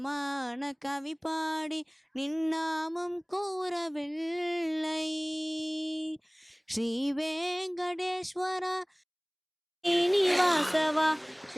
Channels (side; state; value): both; identical; correlation 1.00